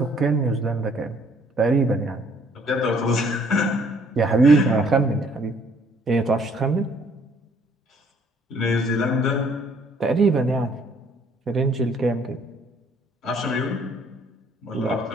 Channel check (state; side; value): normal; both; correlation 0.62